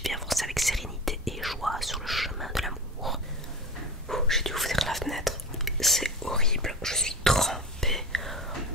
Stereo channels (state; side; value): normal; both; correlation 0.30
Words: et avancer avec sérénité et joie sur le chemin de l'amour. J'ai dû ouvrir la fenêtre, c'est horrible, je suis trempée.